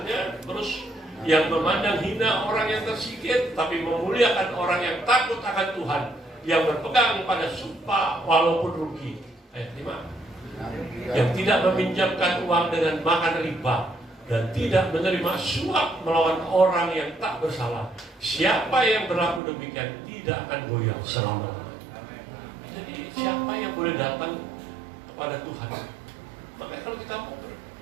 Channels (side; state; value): left; drops out; at 19.4 s